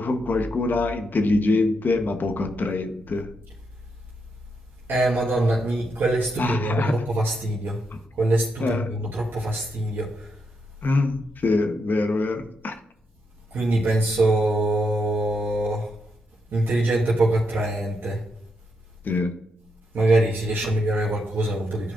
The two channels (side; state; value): both; normal; correlation 0.81